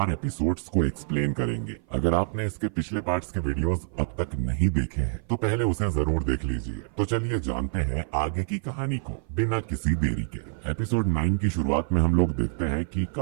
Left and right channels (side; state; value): left; silent; 55 dB below the other